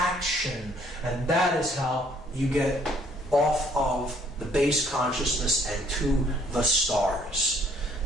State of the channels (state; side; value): normal; both; correlation 0.63